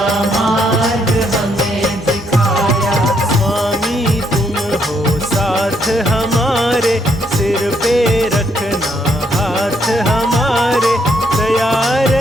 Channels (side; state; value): both; normal; correlation 0.73